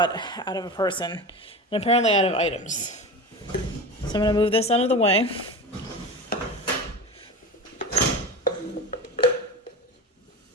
out of a person, and apparently out of items. So I'm going to move this out of the way.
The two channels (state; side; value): normal; both; correlation 0.28